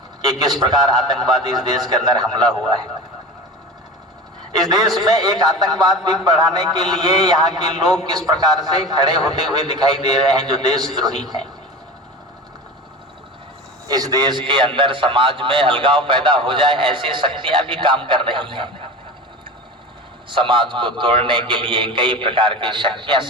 कि किस प्रकार आतंकवादी इस देश के अंदर हमला हुआ है। इस देश में एक आतंकवाद भी बढ़ाने के लिए यहाँ के लोग किस प्रकार से खड़े होते हुए दिखाई दे रहे हैं, जो देशद्रोही हैं। इस देश के अंदर समाज में अलगाव पैदा हो जाए, ऐसी शक्तियां भी काम कर रही हैं। समाज को तोड़ने के लिए कई प्रकार की शक्तियां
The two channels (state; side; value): normal; both; correlation 0.32